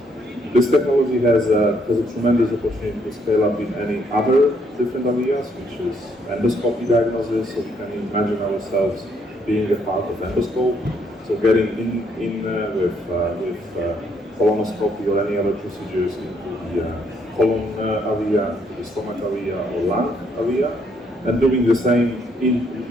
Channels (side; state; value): both; normal; correlation 0.71